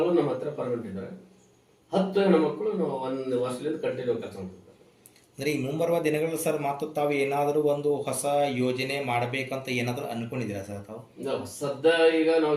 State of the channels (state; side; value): identical; both; correlation 1.00